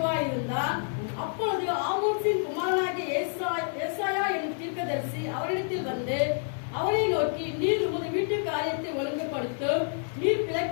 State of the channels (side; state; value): right; silent; 59 dB below the other